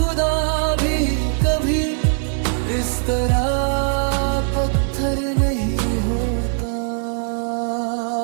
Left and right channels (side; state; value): left; silent; digital silence